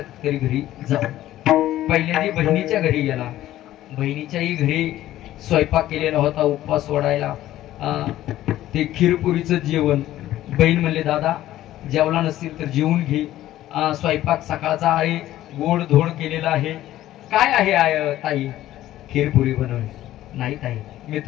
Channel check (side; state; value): right; quieter; 14.0 dB